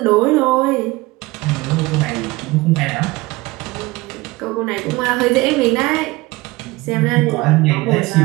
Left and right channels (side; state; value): left; quieter; 21.3 dB